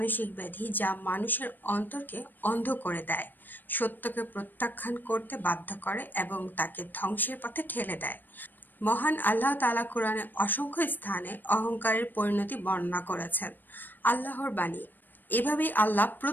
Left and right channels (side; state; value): right; late; 0.091 ms